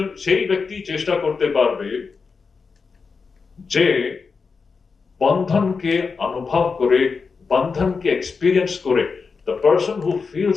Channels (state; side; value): quieter; right; 5.0 dB